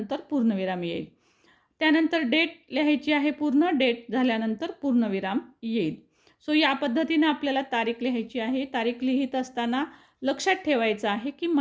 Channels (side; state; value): both; identical; correlation 1.00